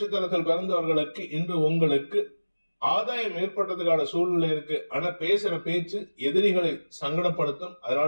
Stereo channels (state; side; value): inverted; both; correlation -1.00